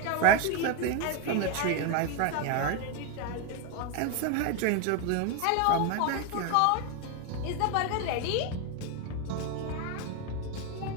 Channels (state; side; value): different; both; correlation 0.02